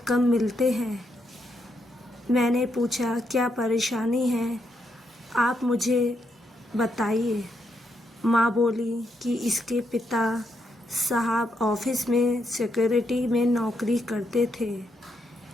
मिलते हैं। मैंने पूछा, क्या परेशानी है, आप मुझे बताइए। माँ बोली कि इसके पिता साहब ऑफिस में सिक्योरिटी में नौकरी करते थे।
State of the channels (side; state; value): both; normal; correlation 0.80